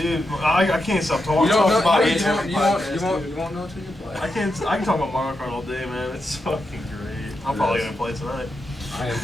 I can't stop talking. You don't know. about You it won't- every you won't- podcast, you won't- dude. you won't know until you play. I can talk about Mario Kart all day, man. It's fucking great. I'm probably gonna play tonight. I am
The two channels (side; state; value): both; normal; correlation 0.86